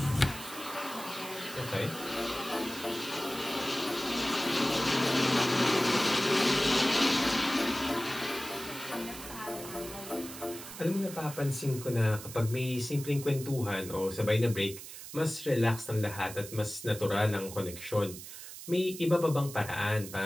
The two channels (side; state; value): right; noise; hiss, 12 dB below the sound